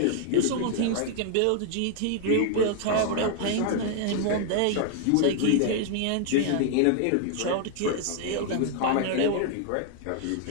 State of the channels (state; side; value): different; both; correlation 0.00